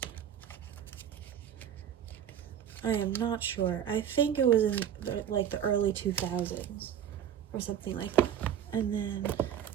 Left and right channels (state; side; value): quieter; left; 9.6 dB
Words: I am not sure. I think it was in like the early 2000s or something like that. And then,